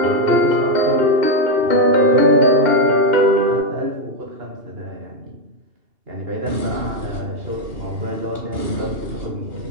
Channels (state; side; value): late; left; 2.7 ms